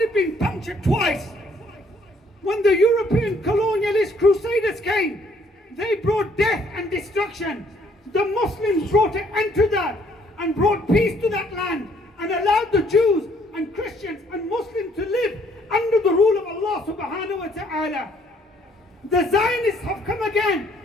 been punctured twice. When the European colonialist crusaders came, they brought death and destruction. The Muslims brought an end to that and brought peace to that land and allowed the Jews and Christians and Muslims to live under the rule of Allah subhanahu wa ta'ala. The Zionists have come again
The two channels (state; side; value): normal; both; correlation 0.65